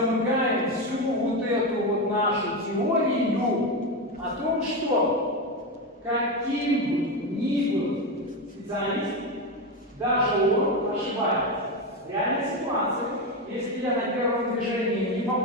всю вот эту вот нашу теорию о том, что каким бы ни был специалист, даже он ошибается. В реальной ситуации, если я на первом движении не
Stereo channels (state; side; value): normal; both; correlation 0.14